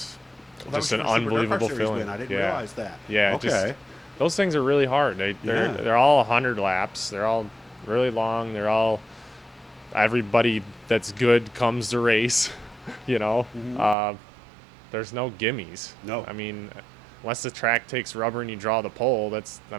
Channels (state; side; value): drops out; left; at 14.0 s